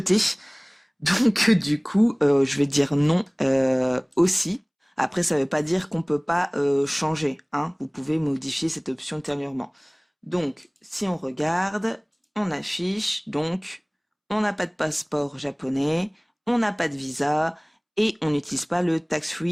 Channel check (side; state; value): both; identical; correlation 1.00